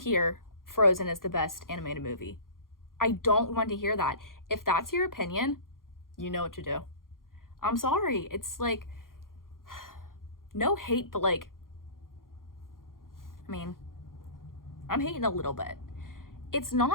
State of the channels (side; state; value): right; late; 0.91 ms